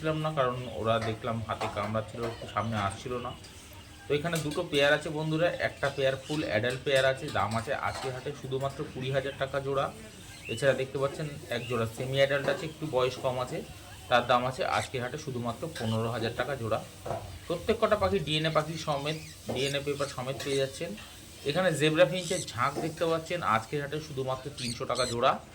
না, কারণ ওরা দেখলাম হাতে কামড়াচ্ছিল, একটু সামনে আসছিল না। তো এখানে দুটো পেয়ার আছে বন্ধুরা, একটা পেয়ার ফুল অ্যাডাল্ট পেয়ার আছে। দাম আছে আজকের হাটে শুধুমাত্র 20,000 টাকা জোড়া। এছাড়া দেখতে পাচ্ছেন এক জোড়া সেমি অ্যাডাল্ট আছে, একটু বয়স কম আছে, তার দাম আছে আজকের হাটে শুধুমাত্র 15,000 টাকা জোড়া। প্রত্যেক কটা পাখি ডিএনএ পাখি সমেত, ডিএনএ পেপার সমেত পেয়ে যাচ্ছেন। এখানে জেব্রা ফিঞ্চের ঝাঁক দেখতে পাচ্ছেন আজকের হাটে শুধুমাত্র 300 টাকা জোড়া।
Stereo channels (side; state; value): both; identical; correlation 1.00